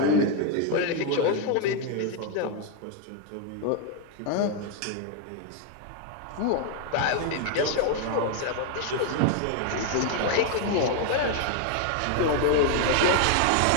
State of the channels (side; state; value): both; different; correlation 0.01